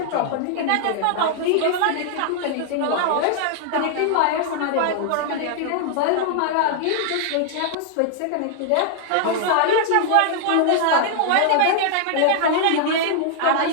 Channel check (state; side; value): different; both; correlation 0.00